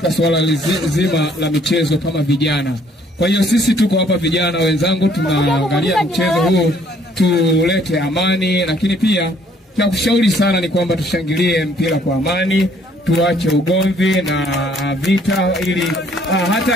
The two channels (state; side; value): normal; both; correlation 0.63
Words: swala zima la michezo kama vijana. Kwa hiyo sisi tuko hapa vijana wenzangu, tunaangalia mchezo huu tulete amani, lakini pia cha kushauri sana ni kwamba tushangilie mpira kwa amani, tuache ugomvi na vita, ili